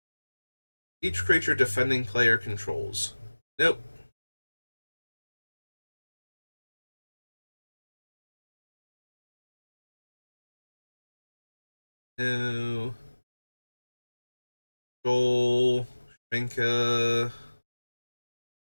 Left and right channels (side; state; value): both; inverted; correlation -1.00